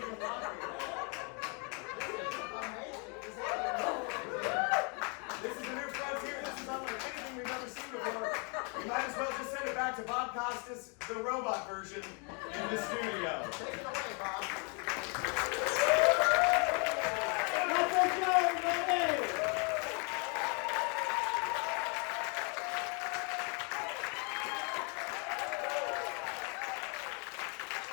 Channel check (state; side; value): quieter; right; 35.5 dB